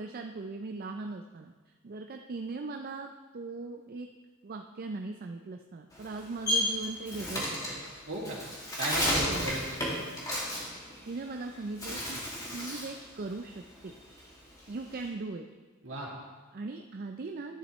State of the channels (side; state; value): both; normal; correlation 0.25